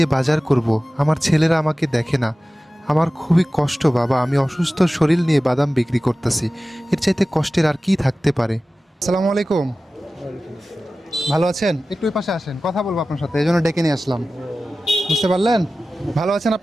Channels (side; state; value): both; normal; correlation 0.96